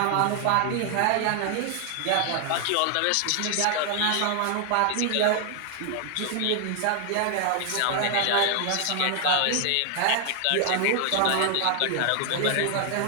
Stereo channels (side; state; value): both; different; correlation 0.00